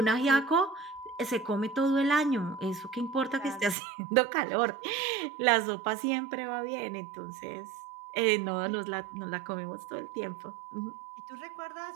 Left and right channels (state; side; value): drops out; left; at 3.8 s